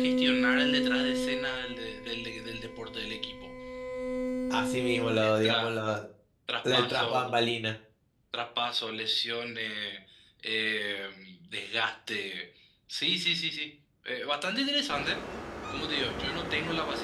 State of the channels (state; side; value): identical; both; correlation 1.00